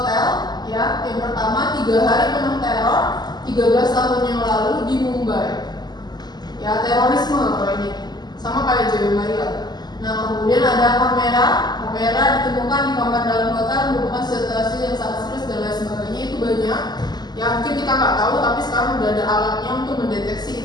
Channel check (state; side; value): late; right; 0.20 ms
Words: Yang pertama, 3 hari penuh teror 13 tahun yang lalu di Mumbai. Ya, terorisme kalau ini. Sama kayak Joy Maria. Nah, kemudian ada kamera ditemukan di kamar dalam hotel merupakan situasi yang sangat serius dan lain sebagainya. Itu banyak yang mungkin kita nggak tahu, tapi sekarang udah ada alatnya untuk